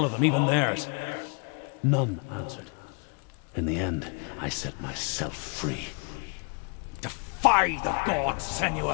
of them, even theirs. None answered. In the end, I set myself free. Defy the gods,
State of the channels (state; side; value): quieter; right; 36.2 dB